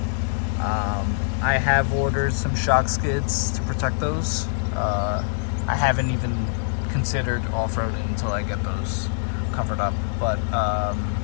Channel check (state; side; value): silent; right; 63 dB below the other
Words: I have ordered some shock skids to protect those. I haven't even considered off-roading until I get those covered up. But